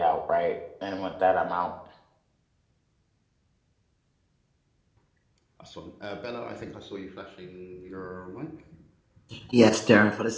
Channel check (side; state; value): both; identical; correlation 1.00